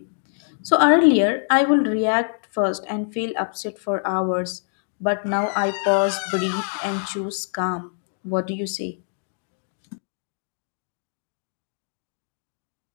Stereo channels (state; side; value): silent; right; digital silence